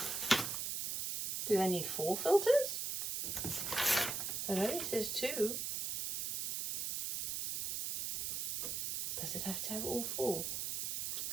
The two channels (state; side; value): noise; right; hiss, 1 dB below the sound